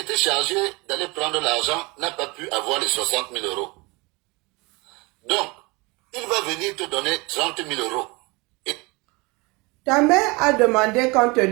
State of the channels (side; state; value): left; quieter; 26.3 dB